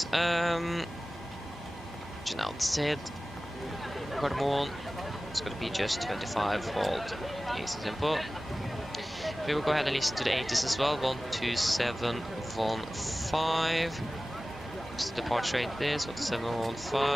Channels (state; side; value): normal; both; correlation 0.97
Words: Outside. Cardamom. It's going to be just 25 volt. Easy simple. We will go ahead and listen to the 80s as well. 12715. What's the departure rate is?